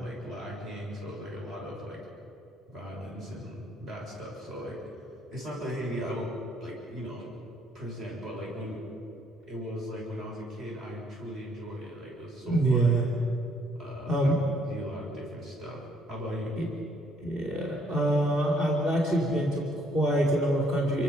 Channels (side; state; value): both; normal; correlation 0.67